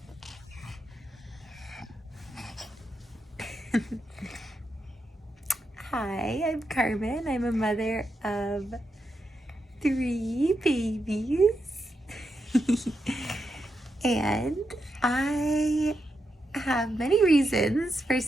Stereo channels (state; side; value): normal; both; correlation 0.84